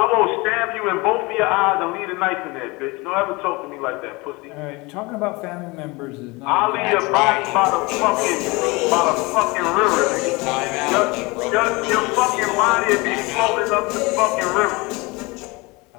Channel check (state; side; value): quieter; right; 24.9 dB